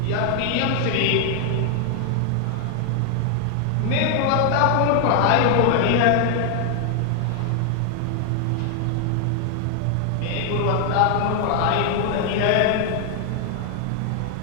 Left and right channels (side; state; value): both; different; correlation 0.00